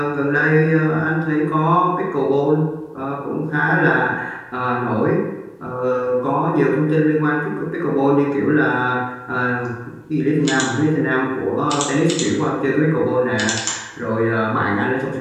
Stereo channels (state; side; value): identical; both; correlation 1.00